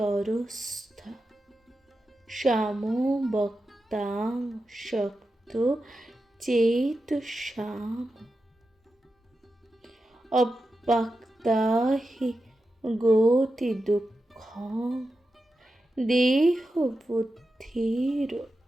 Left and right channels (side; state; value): both; normal; correlation 0.90